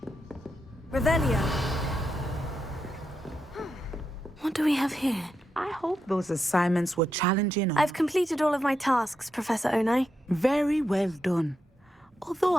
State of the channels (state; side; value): normal; both; correlation 0.85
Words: Revelio. What do we have here? I hope those assignments were challenging. I've completed all of my tasks, Professor Onai. Very well done. Although